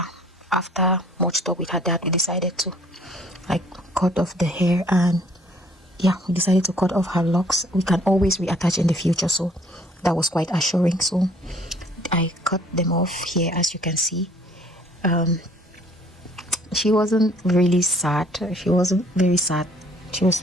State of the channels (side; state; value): both; normal; correlation 0.59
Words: After much talk with her dad, we decided to like cut off the hair, and yeah, we decided to cut off her locks. We can always reattach in the future, so that was quite assuring. So I cut them off here, as you can see. She wasn't really sad. She wasn't very sad. She was